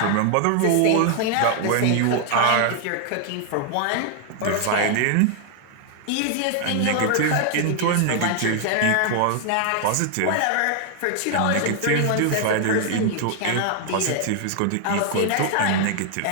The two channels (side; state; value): both; different; correlation 0.00